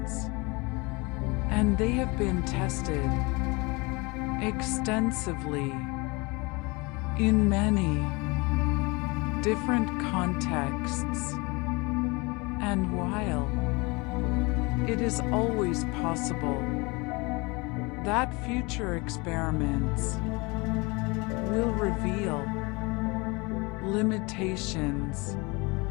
and they have been tested extensively in many different contexts. And while it is always possible that future experiments will reveal limitations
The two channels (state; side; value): quieter; right; 26.5 dB